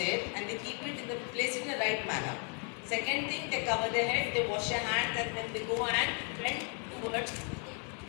and they keep it in the place in the right manner. Second thing, they cover their head, they wash their hands, and then they go and trend towards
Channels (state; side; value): quieter; right; 39.9 dB